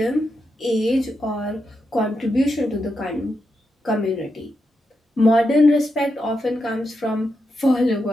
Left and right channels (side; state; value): both; normal; correlation 0.85